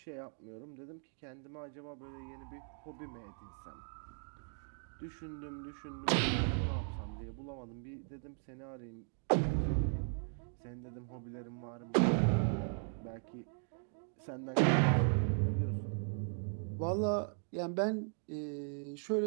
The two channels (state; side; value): silent; left; 52 dB below the other